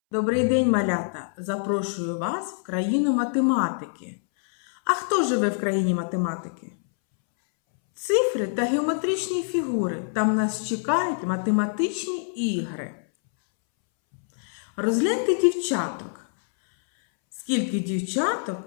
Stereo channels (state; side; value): silent; right; 62 dB below the other